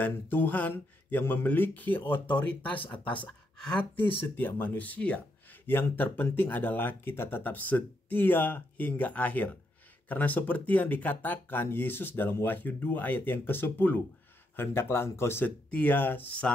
Tuhan yang memiliki otoritas atas hati setiap manusia. Yang terpenting adalah kita tetap setia hingga akhir. Karena seperti yang dikatakan Yesus dalam Wahyu 2 ayat yang ke-10, "Hendaklah engkau setia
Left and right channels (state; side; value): normal; both; correlation 0.79